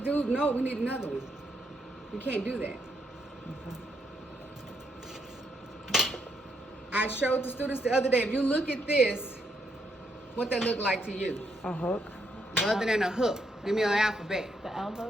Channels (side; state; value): both; normal; correlation 0.77